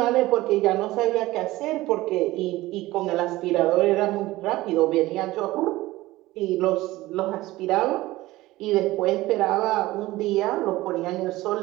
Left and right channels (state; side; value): quieter; left; 18.0 dB